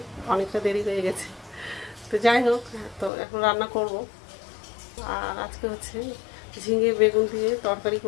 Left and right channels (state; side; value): drops out; right; at 3.1 s